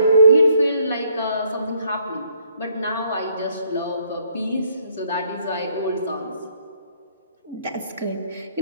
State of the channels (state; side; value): inverted; both; correlation -0.67